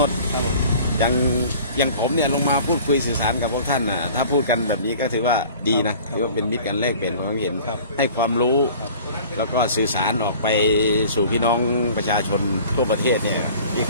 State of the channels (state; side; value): inverted; both; correlation -0.46